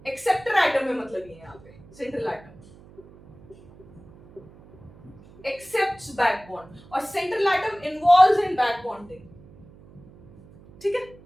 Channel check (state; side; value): noise; right; hum, 23 dB below the sound